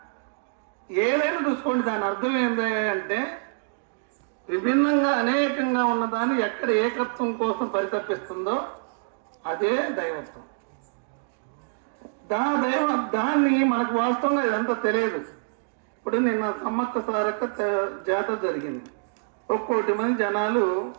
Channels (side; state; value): left; silent; digital silence